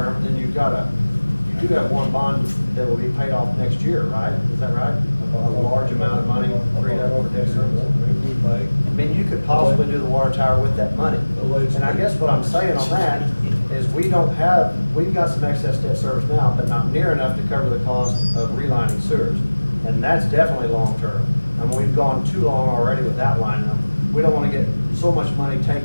then you do have one bond that will be paid off next year, right? Is that right? A large amount of money freed up for debt service. Maybe we may. I mean, you could possibly do the water tower with that money. And I guess what I'm saying on that is we've got some excess debt service now, but not near enough to cover the cost of relining sewers. And that's definitely long-term. I mean, we've gone too long already without lining them. We don't wanna get so much money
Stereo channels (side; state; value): both; inverted; correlation -1.00